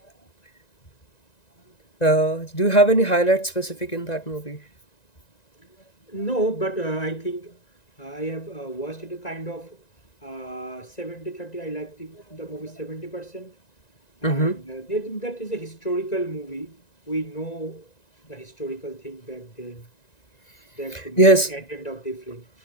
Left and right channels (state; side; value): late; right; 1.9 ms